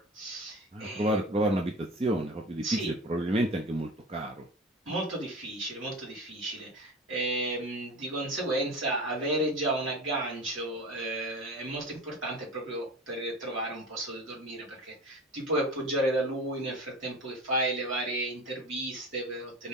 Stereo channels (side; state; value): both; normal; correlation 0.33